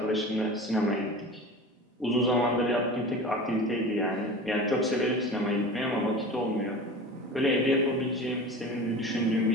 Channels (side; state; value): both; normal; correlation 0.34